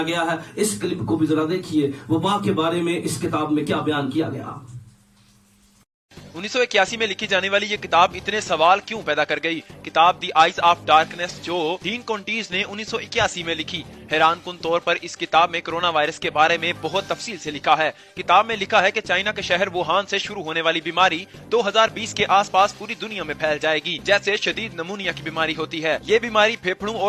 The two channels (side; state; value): both; identical; correlation 1.00